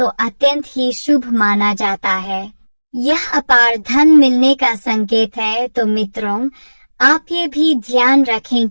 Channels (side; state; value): both; inverted; correlation -1.00